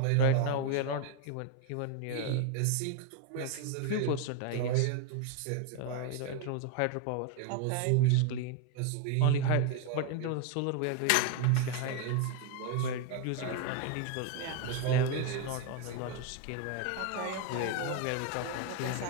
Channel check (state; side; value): different; both; correlation 0.01